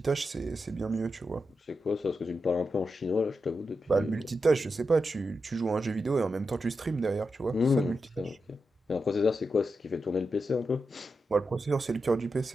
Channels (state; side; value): normal; both; correlation 0.88